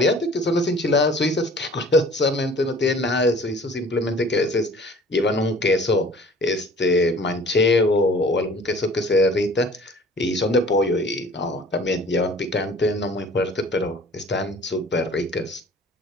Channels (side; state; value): both; normal; correlation 0.49